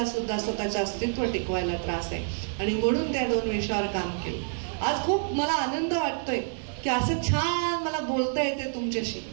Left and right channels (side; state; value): left; silent; digital silence